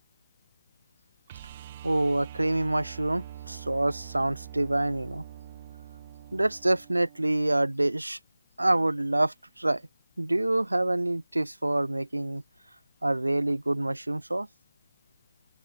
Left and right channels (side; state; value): both; inverted; correlation -1.00